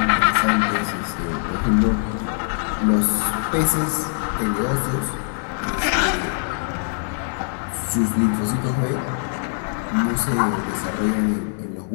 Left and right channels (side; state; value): right; silent; digital silence